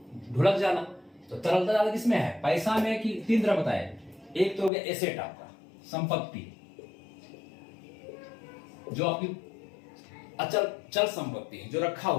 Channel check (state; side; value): drops out; right; at 4.7 s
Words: ढुलक जाना। तो तरलता ज्यादा किसमें है? पैसा में। कि 3 तरह बताए, एक तो हो गया एसेट, आपका संपत्ति, जो आपकी अचल चल संपत्ति जो रखा